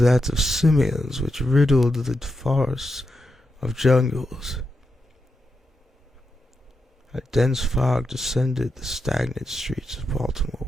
of simians which riddled the forests of jungles. A dense fog descended the stagnant streets of Baltimore,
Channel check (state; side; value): normal; both; correlation 0.86